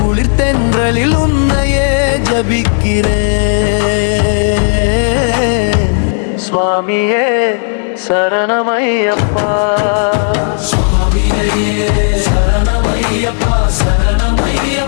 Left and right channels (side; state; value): right; silent; digital silence